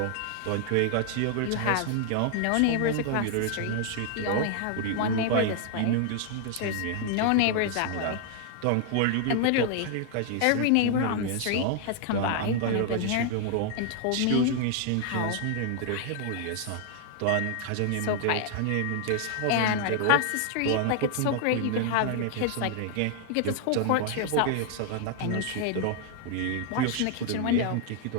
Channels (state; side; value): different; both; correlation 0.00